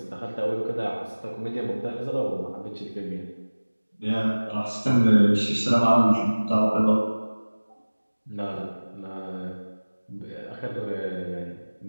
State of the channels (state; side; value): inverted; both; correlation -1.00